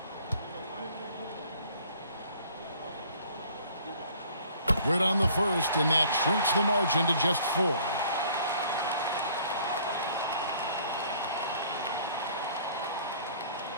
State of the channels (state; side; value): inverted; both; correlation -0.55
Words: Good on the first, and that shrinks the margin to just 4.